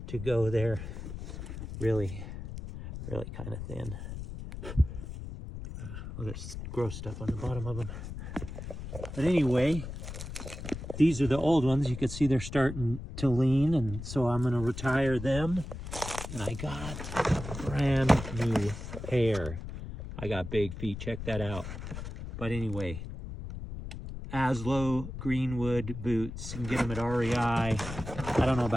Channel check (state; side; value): noise; left; rumble, 9 dB below the sound